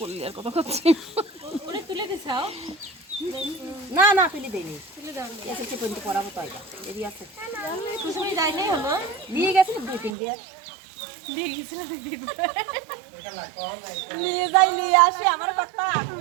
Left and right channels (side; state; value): left; drops out; at 10.2 s